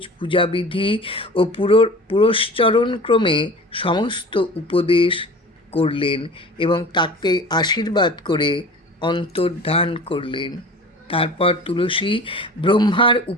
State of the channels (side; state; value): both; normal; correlation 0.39